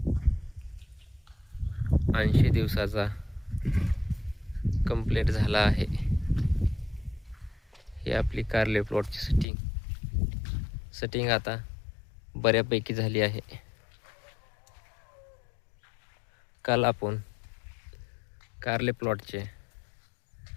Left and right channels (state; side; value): drops out; right; at 9.5 s